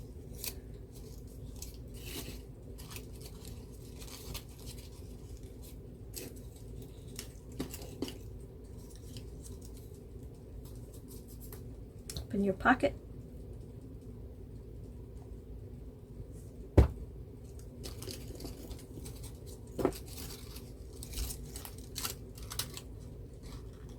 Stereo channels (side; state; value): both; identical; correlation 1.00